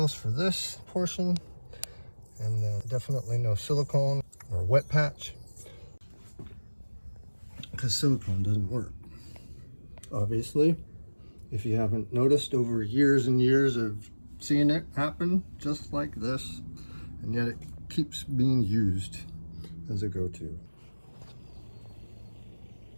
for this portion, and then definitely no silicone or wet patch, because silicone doesn't work. Obviously, if you haven't noticed over years and years of seeing it happen just like this, and yet it keeps being used as a go-to.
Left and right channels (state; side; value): inverted; both; correlation -1.00